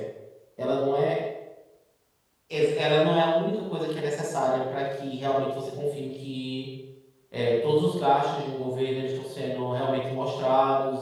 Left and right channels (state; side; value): identical; both; correlation 1.00